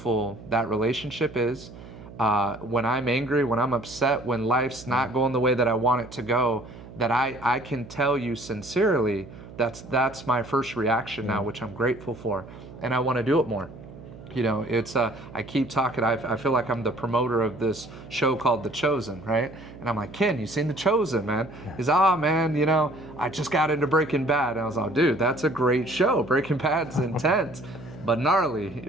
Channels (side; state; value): right; noise; hum, 16 dB below the sound